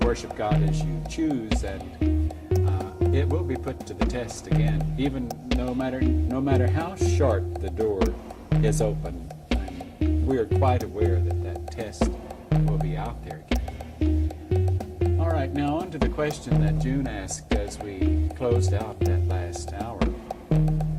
worship God as you choose, and it will be put to the test again, even no matter how short the door is open. We are quite aware that that test will be out there again. All right, now on to the question that June asked as we closed out that last hour.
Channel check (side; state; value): both; identical; correlation 1.00